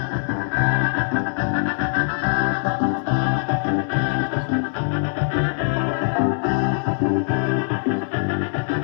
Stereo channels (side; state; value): right; silent; digital silence